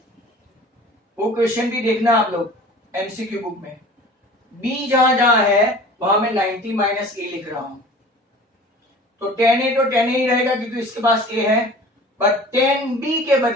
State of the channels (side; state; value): both; normal; correlation 0.43